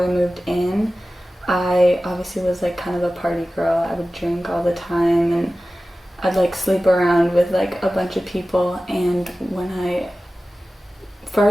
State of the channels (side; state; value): both; normal; correlation 0.96